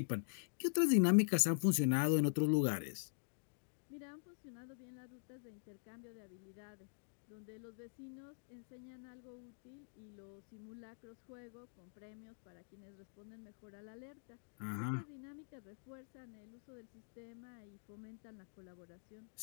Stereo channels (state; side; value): silent; right; digital silence